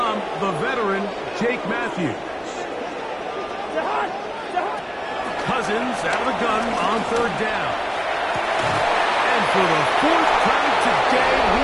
the veteran, Jake Matthews. Cousins out of the gun on third down. And for the fourth time today,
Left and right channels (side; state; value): both; identical; correlation 1.00